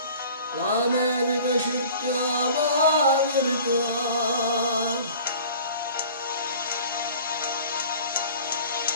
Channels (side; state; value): both; inverted; correlation -0.45